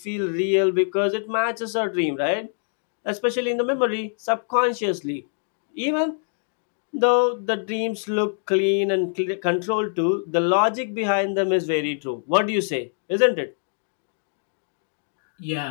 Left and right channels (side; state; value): right; silent; digital silence